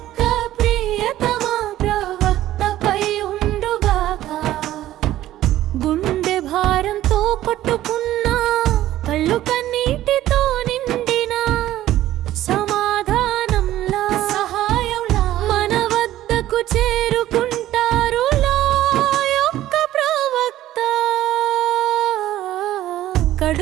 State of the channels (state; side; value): quieter; left; 13.9 dB